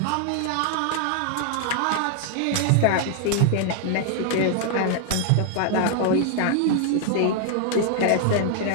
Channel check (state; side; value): different; both; correlation 0.00